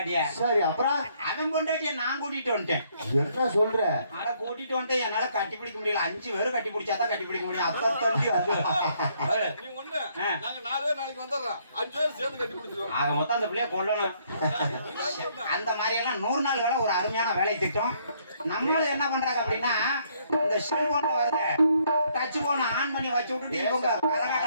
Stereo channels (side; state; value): both; inverted; correlation -0.68